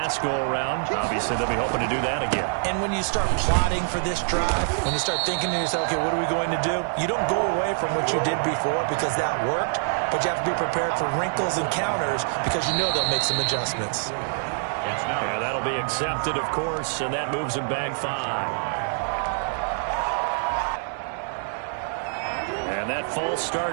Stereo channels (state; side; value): silent; left; 59 dB below the other